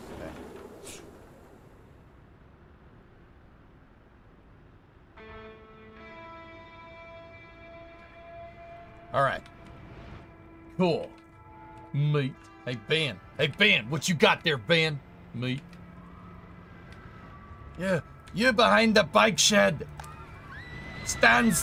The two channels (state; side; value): identical; both; correlation 1.00